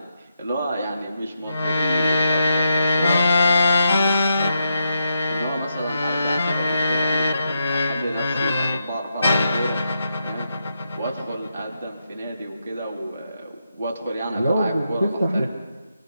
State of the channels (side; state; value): both; inverted; correlation -0.84